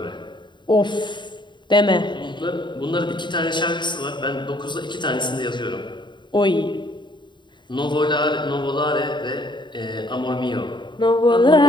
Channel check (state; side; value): late; right; 0.22 ms